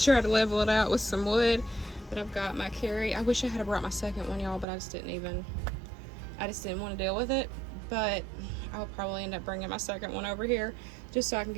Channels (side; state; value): left; drops out; at 4.7 s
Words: to level it out with some wood, but I've got my carry. I wish I had brought my second one, y'all, but I just didn't want to deal with it. But I'll probably end up bringing my second one over here just so I can